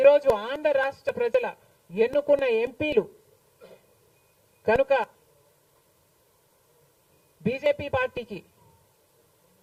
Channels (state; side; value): identical; both; correlation 1.00